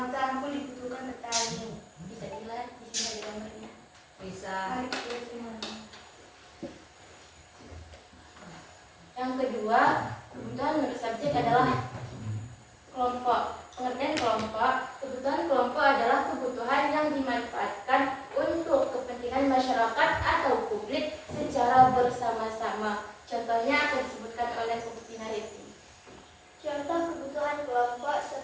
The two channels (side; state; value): both; identical; correlation 1.00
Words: cangkul dibutuhkan petani. Bisa dilihat di sini ada gambarnya. Bisa. Mari kita lihat semuanya. Yang kedua, kebutuhan menurut subjek adalah kelompok. Pengertian kelompok. Kebutuhan kelompok adalah kebutuhan yang dimanfaatkan untuk kepentingan masyarakat atau publik secara bersama-sama. Contohnya akan disebutkan oleh Bukti Nariti. Contoh kebutuhan kelompok